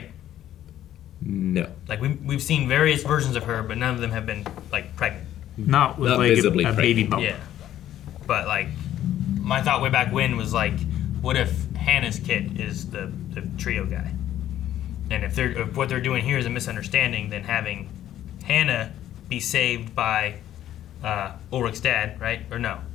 No. Like, we've seen various versions of her, but none of them have been, like, pregnant. Not with Not like visibly a baby bump. Yeah. But, like, my thought way back when was, like, what if Hannah's kid is the trio guy? And if what they're doing here is a misunderstanding, then having Hannah be saved by Ulrich's dad, right? Or no?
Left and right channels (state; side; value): quieter; right; 12.1 dB